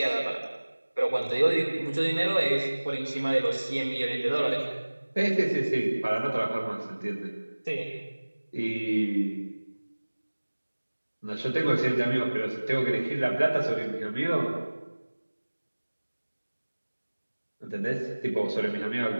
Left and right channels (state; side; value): inverted; both; correlation -1.00